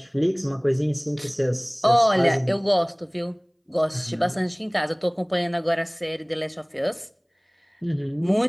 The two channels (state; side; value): identical; both; correlation 1.00